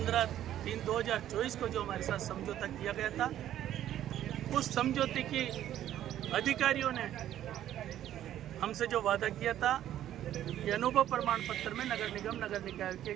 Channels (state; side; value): quieter; left; 11.9 dB